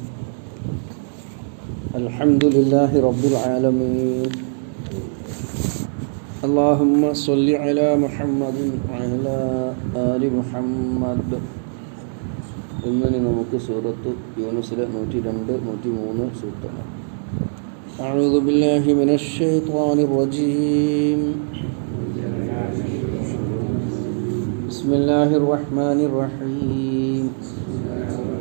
لله رب العالمين. اللهم صل على محمد وعلى آل محمد. ഇന്ന് നമുക്ക് സൂറത്ത് യൂനുസിലെ 102, 103 സൂക്തങ്ങൾ. أعوذ بالله من الشيطان الرجيم. بسم الله الرحمن الرحيم.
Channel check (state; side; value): silent; left; digital silence